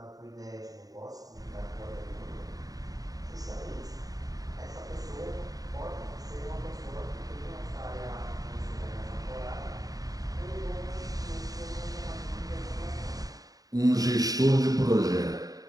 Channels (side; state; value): left; late; 0.18 ms